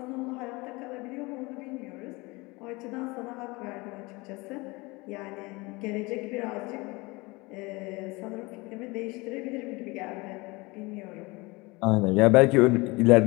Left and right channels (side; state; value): right; quieter; 24.2 dB